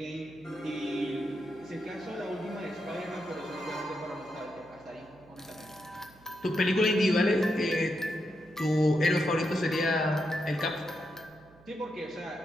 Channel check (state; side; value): noise; right; hum, 26 dB below the sound